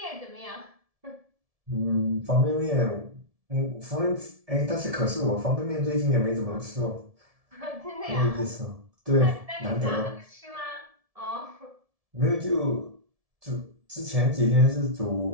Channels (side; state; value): left; late; 1.7 ms